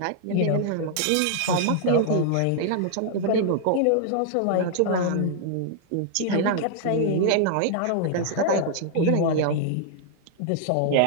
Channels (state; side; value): different; both; correlation -0.01